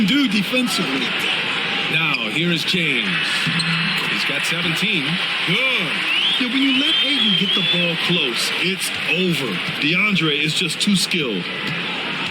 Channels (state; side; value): identical; both; correlation 1.00